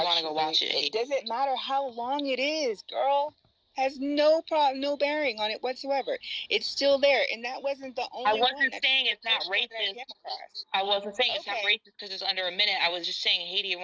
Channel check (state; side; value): identical; both; correlation 1.00